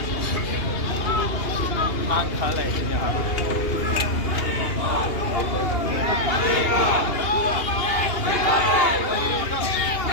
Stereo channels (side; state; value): right; late; 2.8 ms